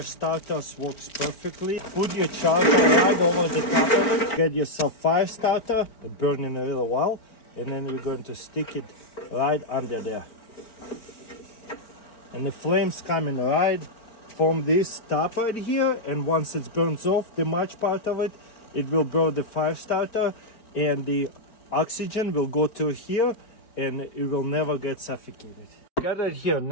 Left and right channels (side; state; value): right; late; 4.4 ms